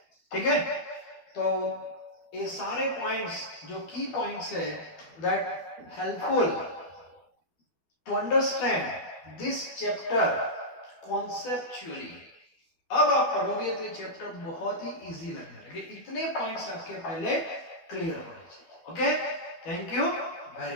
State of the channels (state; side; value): late; right; 12 ms